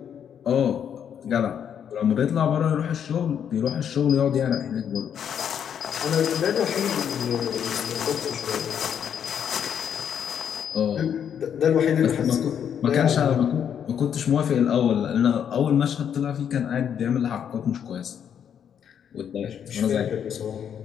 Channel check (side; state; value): right; quieter; 8.5 dB